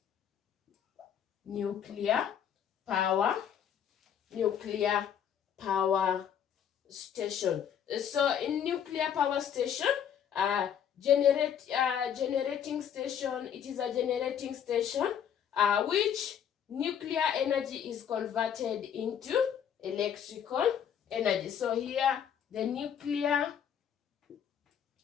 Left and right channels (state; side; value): quieter; right; 8.8 dB